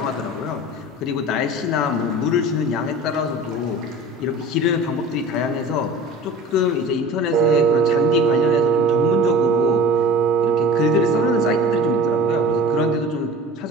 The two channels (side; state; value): both; normal; correlation 0.38